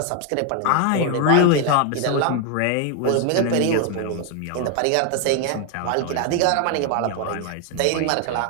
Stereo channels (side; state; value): both; different; correlation 0.01